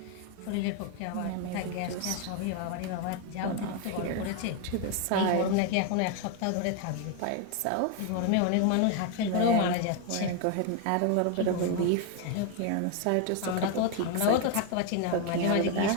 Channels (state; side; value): different; both; correlation 0.01